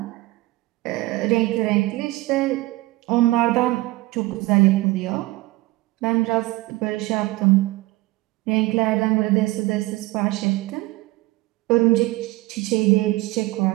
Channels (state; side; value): quieter; left; 19.9 dB